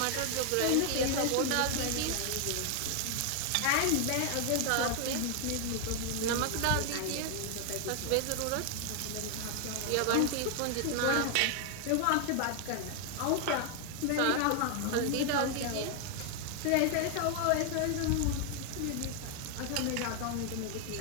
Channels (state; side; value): different; both; correlation 0.00